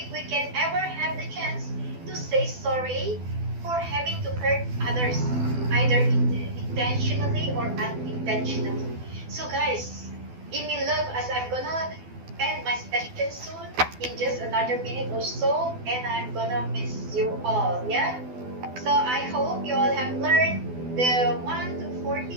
we can ever have the chance to say sorry for having to hurt others, either intentionally or unintentionally. So, guys, give me love as I'm gonna end my session soon in just another minute or so, and I'm gonna miss you all. Yeah? So, I hope you all have learned the 1 to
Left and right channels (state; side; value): late; left; 12 ms